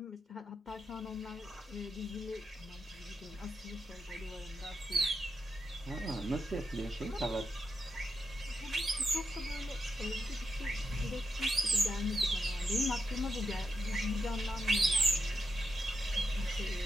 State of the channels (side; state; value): both; normal; correlation 0.84